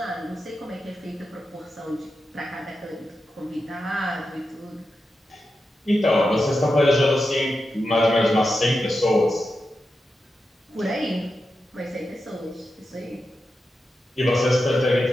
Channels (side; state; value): both; normal; correlation 0.89